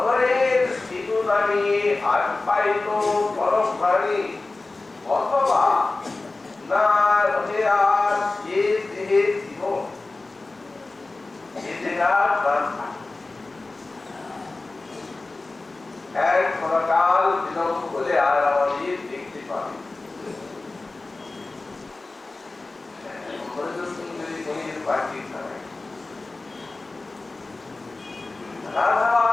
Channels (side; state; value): right; quieter; 3.3 dB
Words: সিঁদুর রানী আর পাইত পরশ ভারী, অথবা না রহে আর এ দেহে জীবন, এ দেহার প্রাণ এক ক্ষণকাল বিলম্ব হলে আর আমাদের দেখতে পাবে। সুন্দরী মনির বাকি ছাড়াই রাধা